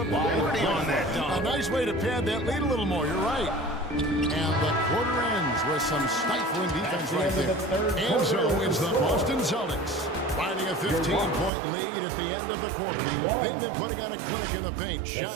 Liberty on that dunk? A nice way to pad that lead a little more. You're right. And the quarter ends with some stifling defense right there. And so it's the Boston Celtics finding a 15-point lead at the end of the quarter. They've been putting on a clinic in the paint.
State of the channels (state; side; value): drops out; left; at 11.5 s